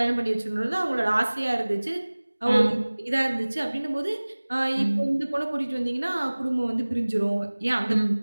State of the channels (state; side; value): inverted; both; correlation -1.00